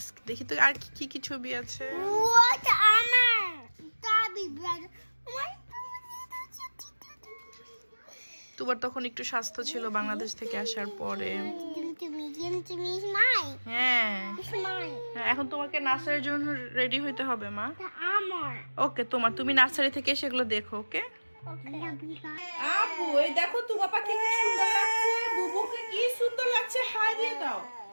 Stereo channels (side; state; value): both; inverted; correlation -1.00